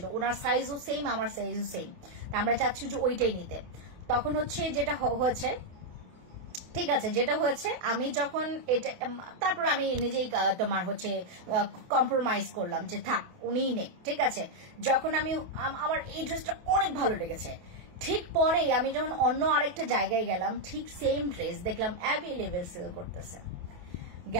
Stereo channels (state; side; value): late; left; 28 ms